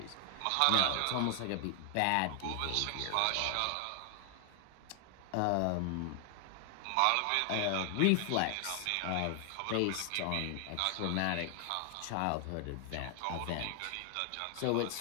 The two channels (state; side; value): different; both; correlation 0.00